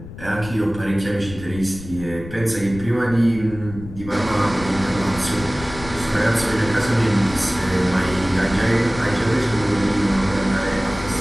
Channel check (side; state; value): left; noise; rumble, 14 dB below the sound